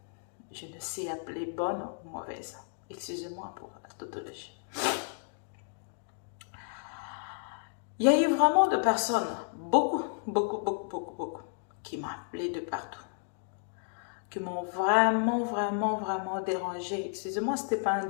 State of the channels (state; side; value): silent; right; digital silence